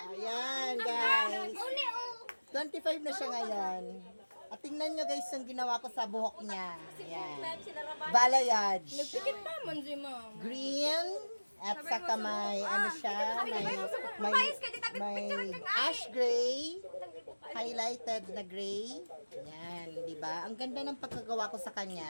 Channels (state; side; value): inverted; both; correlation -1.00